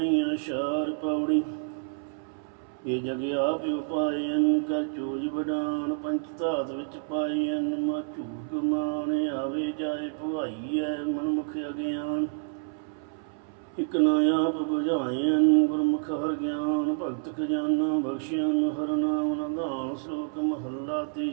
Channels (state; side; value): silent; left; 59 dB below the other